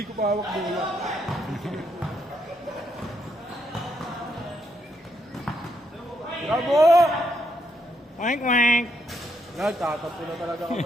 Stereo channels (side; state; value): both; normal; correlation 0.76